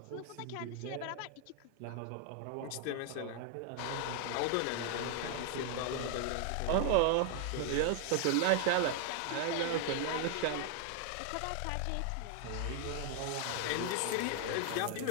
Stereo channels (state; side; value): different; both; correlation 0.00